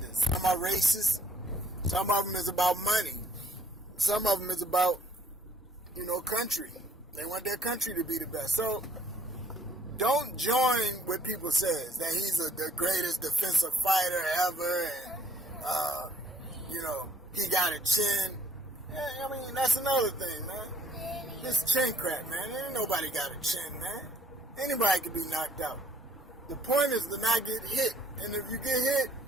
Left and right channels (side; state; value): both; normal; correlation 0.65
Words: Some are racist. Some of them is about money. Some of them is about, country. They want their country to be the best. So don't join what people says, that he's the greatest defensive fighter ever, and, he got a chin. Yeah, I mean, that's another thing, man. This chin crap, man. Ain't nobody got a chin, man. Anybody can be knocked out. The point is to not get hit. And if you get hit,